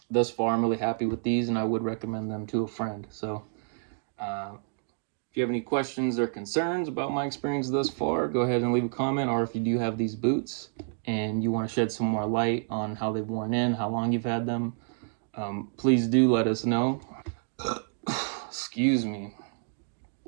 thus far I'm really happy with these, and I would recommend them to a friend. So if you have any questions or concerns about my experience thus far, go ahead and leave a comment. Or if you do have these boots and you want to shed some more light on how they've worn in, how long you've had them, please do let us know. Excuse me.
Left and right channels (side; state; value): left; silent; digital silence